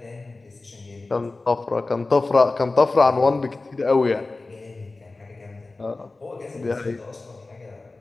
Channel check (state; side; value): quieter; right; 3.4 dB